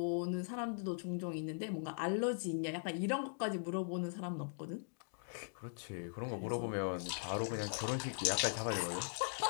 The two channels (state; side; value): silent; right; digital silence